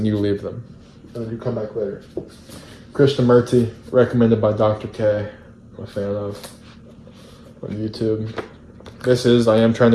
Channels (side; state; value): both; identical; correlation 1.00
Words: you leave them, and then you come back later. Krishnamurti, recommended by Dr. K. I'm a fan of on YouTube. I am trying